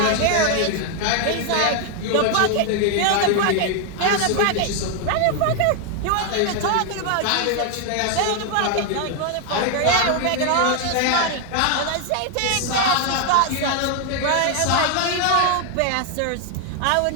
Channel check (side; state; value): both; different; correlation 0.00